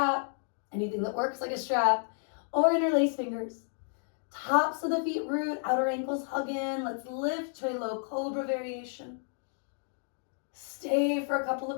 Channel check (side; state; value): right; silent; 57 dB below the other